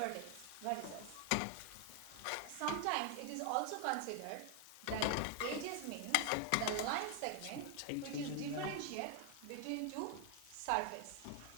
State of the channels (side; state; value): both; different; correlation 0.00